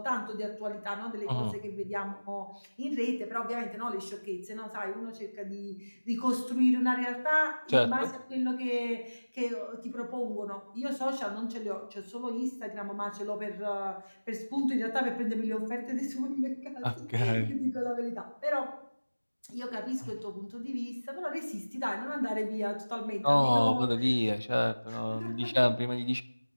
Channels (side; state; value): both; inverted; correlation -1.00